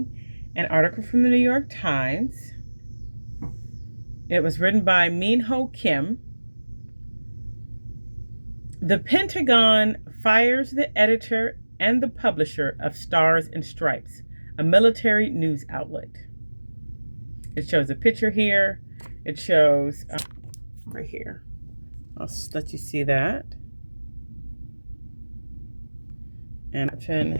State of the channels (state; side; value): inverted; both; correlation -1.00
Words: an article from the New York Times. It was written by Minho Kim. The Pentagon fires the editor and the publisher of Stars and Stripes, a military news outlet. It shows a picture here. It shows right here. I'll let you see that. And option